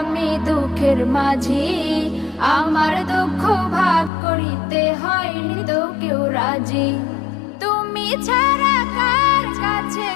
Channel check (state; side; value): drops out; right; at 4.1 s